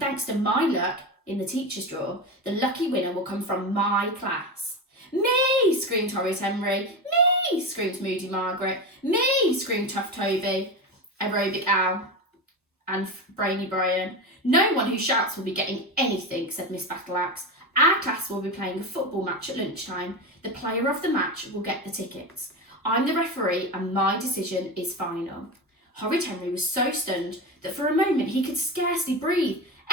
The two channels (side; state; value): both; normal; correlation 0.21